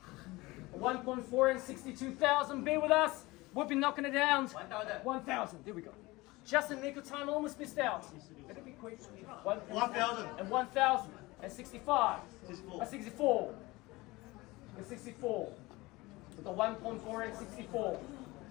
1.4 and 62,000. Be with us. We'll be knocking it down. 1,000. 1,000. There we go. Just in the nick of time. Almost missed out. Better be quick. 1,000. And 1,000. And 65. 64. And 64. And 64. With the 1.4 and 64.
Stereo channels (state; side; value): quieter; right; 21.4 dB